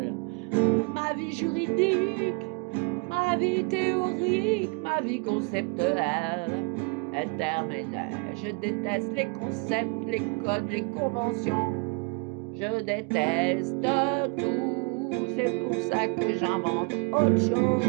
ma vie juridique, ma vie théorique, ma vie conceptuelle est terminée. Je déteste les concepts, les codes, les conventions. Je déteste tout. C'est pour ça que j'invente autre chose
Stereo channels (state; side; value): quieter; left; 33.8 dB